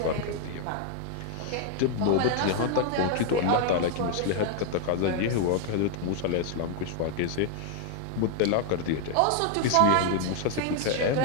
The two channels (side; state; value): both; different; correlation 0.00